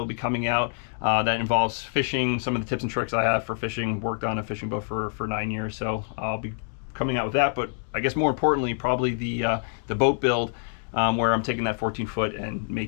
be coming out that involves fishing, some of the tips and tricks I have for fishing. Worked on a fishing boat for 9 years, so I'll be coming out with that. But I guess more importantly, probably the boat build, where I'm taking that 14-foot and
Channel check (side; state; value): right; silent; 61 dB below the other